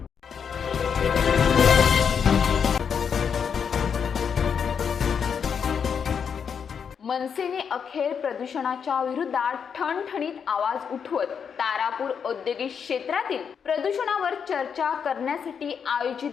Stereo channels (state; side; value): quieter; right; 7.0 dB